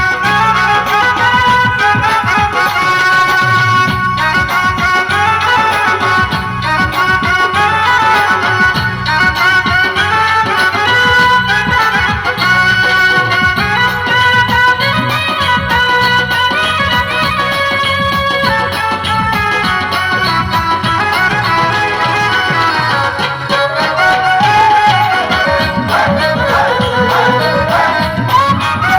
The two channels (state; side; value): identical; both; correlation 1.00